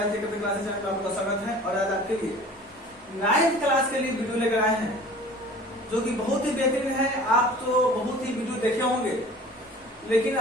channel में आपका स्वागत है। और आज आपके लिए 9th क्लास के लिए वीडियो लेकर आए हैं जो कि बहुत ही बेहतरीन है। आप तो बहुत ही वीडियो देखे होंगे, लेकिन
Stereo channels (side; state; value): both; normal; correlation 0.45